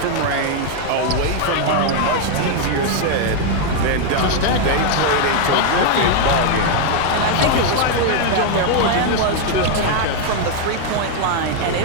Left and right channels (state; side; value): different; both; correlation 0.00